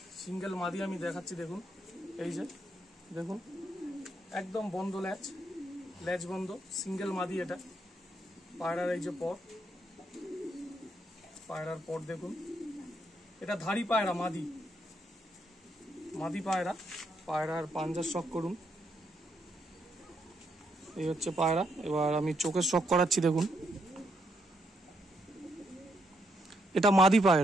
সিঙ্গেল মাদি আমি দেখাচ্ছি দেখুন। এই যে দেখুন একদম বন্ধ লেজ বন্ধ, সিঙ্গেল মাদি এটা। পায়রার এই যে পায়রার পর দেখুন। এটা ধাড়ি পায়রা, মাদি পায়রা। পায়রার পাঞ্জার শখ করুন। এই হচ্ছে পায়রা। এবার আমি চোখের শখ করাচ্ছি দেখুন। এটা মাদি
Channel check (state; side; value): normal; both; correlation 0.77